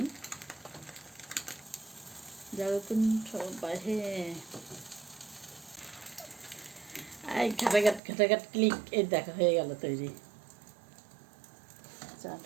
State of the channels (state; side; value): drops out; left; at 8.0 s